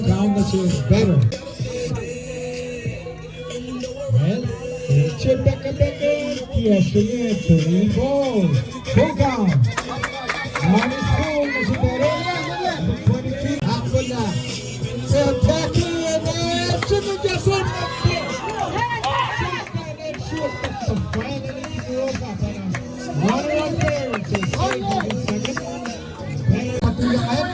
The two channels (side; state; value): both; identical; correlation 1.00